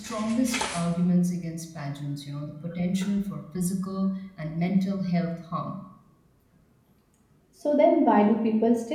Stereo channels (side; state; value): both; identical; correlation 1.00